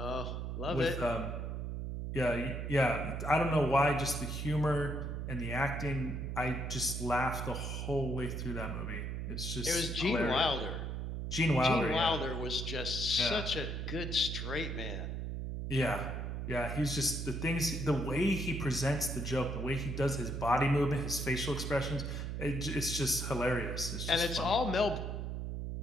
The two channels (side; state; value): right; noise; hum, 4 dB below the sound